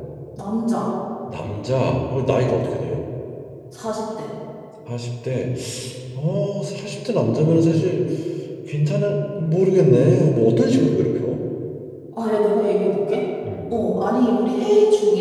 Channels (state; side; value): identical; both; correlation 1.00